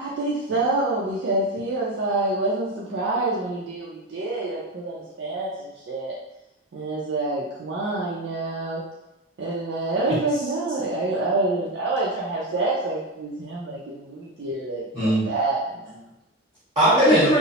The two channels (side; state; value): both; normal; correlation 0.17